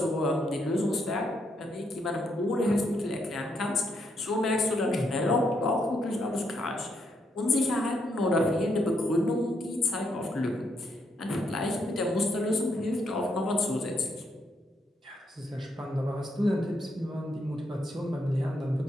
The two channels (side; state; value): both; normal; correlation 0.77